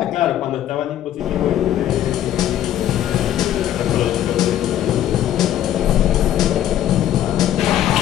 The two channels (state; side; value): quieter; right; 11.7 dB